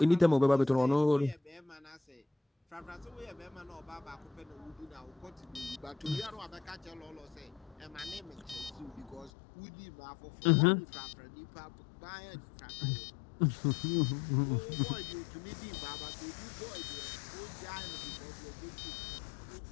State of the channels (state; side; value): drops out; right; at 9.3 s